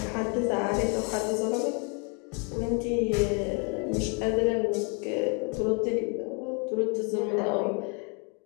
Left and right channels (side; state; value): right; quieter; 35.8 dB